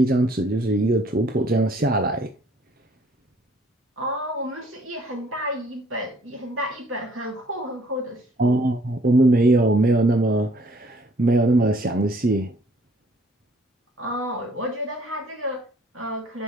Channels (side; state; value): both; normal; correlation 0.60